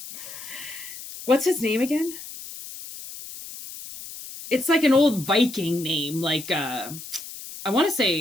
What's his name again? It's like an old Viking name. Like, I want to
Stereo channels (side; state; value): left; noise; hiss, 13 dB below the sound